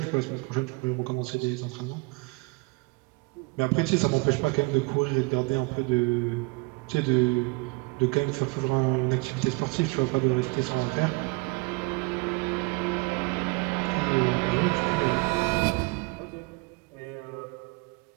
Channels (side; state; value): left; quieter; 27.6 dB